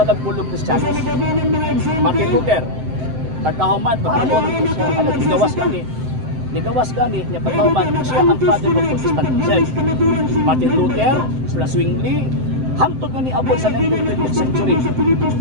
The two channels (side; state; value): left; late; 7.8 ms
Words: Kristiyanos. Martin Luther, pagkahuman, Nigawas gani niya pagkahuman, siya ang father of Protestantism. Martin Luther, sila Zwingli, hangtod nga ni abot sa 19th century.